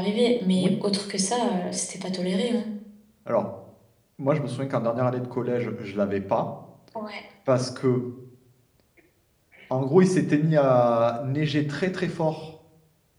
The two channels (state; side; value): identical; both; correlation 1.00